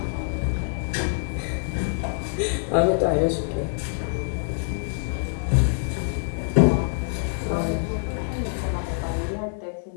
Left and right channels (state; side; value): silent; right; digital silence